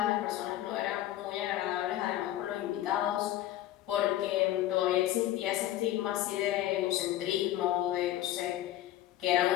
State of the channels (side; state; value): right; quieter; 13.6 dB